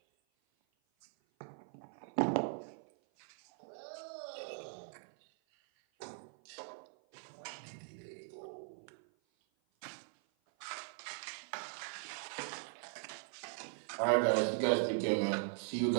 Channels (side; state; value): left; silent; 51 dB below the other